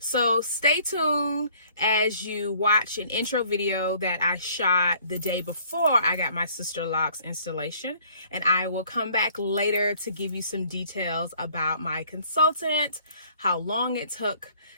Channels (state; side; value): inverted; both; correlation -0.58